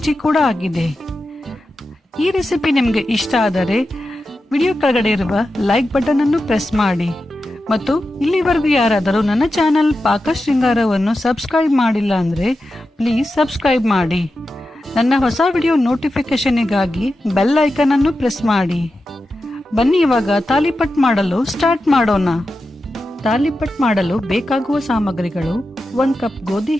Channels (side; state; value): both; normal; correlation 0.91